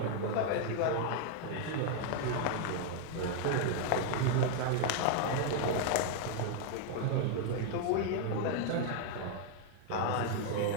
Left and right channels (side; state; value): both; different; correlation 0.00